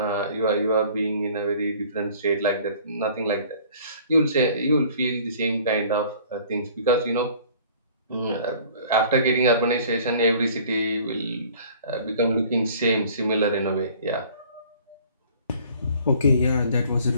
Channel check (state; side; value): inverted; both; correlation -0.51